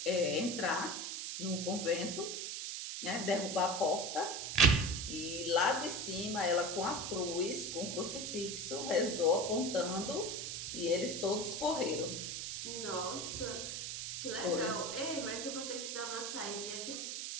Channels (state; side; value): noise; right; hiss, 4 dB below the sound